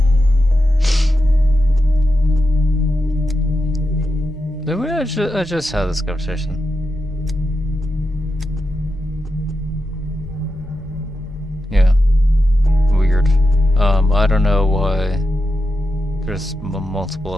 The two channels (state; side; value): normal; both; correlation 0.88